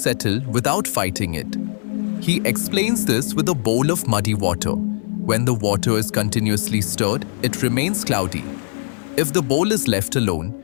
without fighting it. He explains this with a bowl of muddy water. When the water is continuously stirred, it remains cloudy. If the bowl is left alone,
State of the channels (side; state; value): right; silent; 58 dB below the other